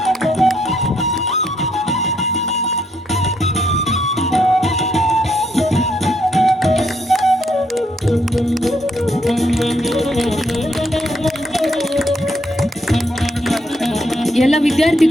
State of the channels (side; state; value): both; normal; correlation 0.73